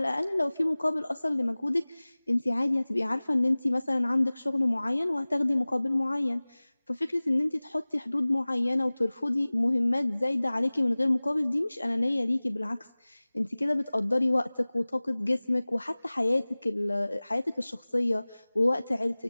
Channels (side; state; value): both; inverted; correlation -0.99